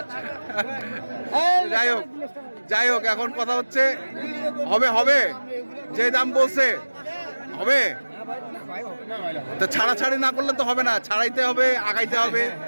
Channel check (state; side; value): inverted; both; correlation -1.00